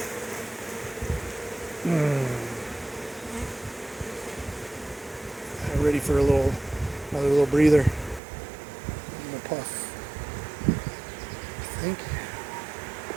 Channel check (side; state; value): left; drops out; at 8.2 s